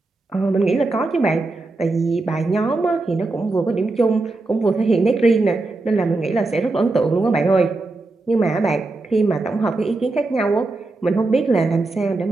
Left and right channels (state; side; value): quieter; left; 3.2 dB